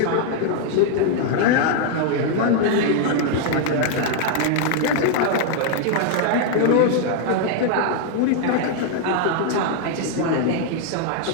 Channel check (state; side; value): different; both; correlation 0.00